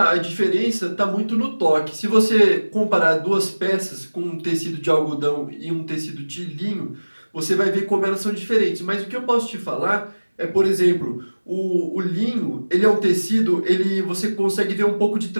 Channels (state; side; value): inverted; both; correlation -1.00